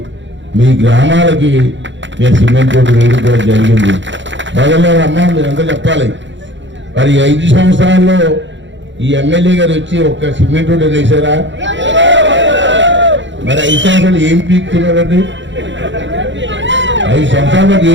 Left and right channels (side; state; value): left; late; 0.54 ms